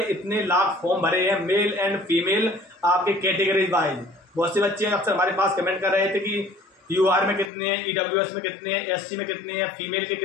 इतने लाख फॉर्म भरे हैं, मेल एंड फीमेल, आपके कैटेगरी वाइज। बहुत से बच्चे अक्सर हमारे पास कमेंट कर रहे थे कि यूआर में कितने हैं, ईडब्ल्यूएस में कितने हैं, एससी में कितने हैं, फीमेल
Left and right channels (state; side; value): drops out; right; at 7.5 s